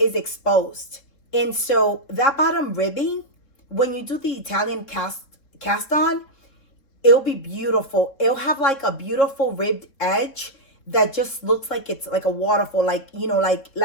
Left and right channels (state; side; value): late; right; 3.7 ms